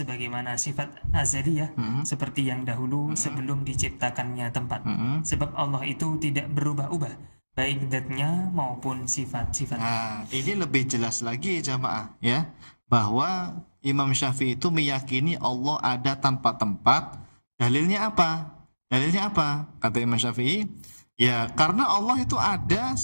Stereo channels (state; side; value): inverted; both; correlation -1.00